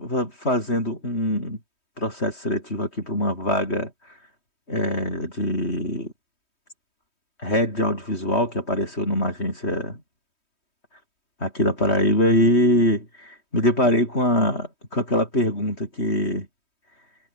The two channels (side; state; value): right; late; 3.2 ms